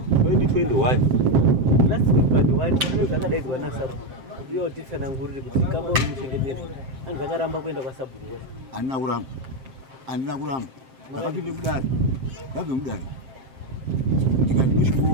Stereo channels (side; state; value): left; late; 7.6 ms